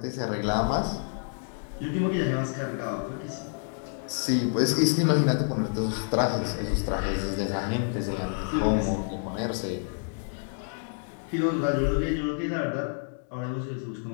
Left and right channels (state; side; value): silent; right; digital silence